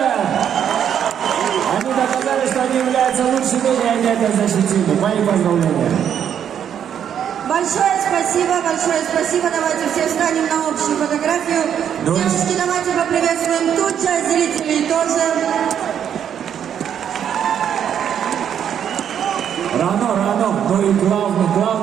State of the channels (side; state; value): left; quieter; 8.9 dB